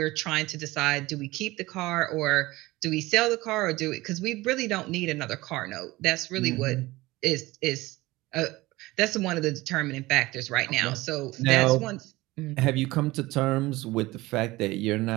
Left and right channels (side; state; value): left; quieter; 19.7 dB